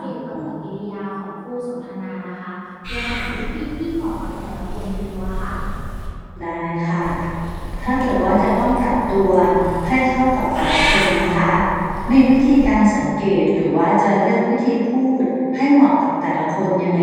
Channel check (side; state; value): both; identical; correlation 1.00